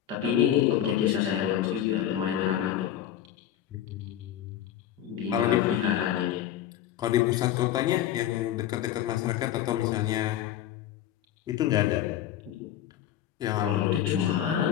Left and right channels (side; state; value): right; quieter; 11.3 dB